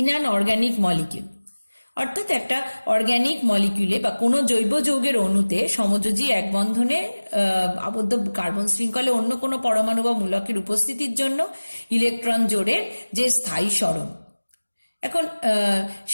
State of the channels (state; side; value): inverted; both; correlation -1.00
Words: an organic molecule. অর্থাৎ একটা অর্গানিক মলিকিউলে বা কোনো জৈব যৌগের অণুতে সমযোজী এক বন্ধনে আবদ্ধ কার্বন শৃঙ্খলে অন্য কোনো পরমাণু বা মূলকের উপস্থিতির জন্য ইলেকট্রন জোড়ের যে স্থায়ী সরণ, এখন